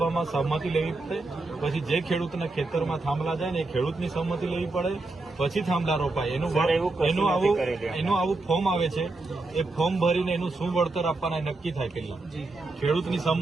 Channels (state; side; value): quieter; left; 3.2 dB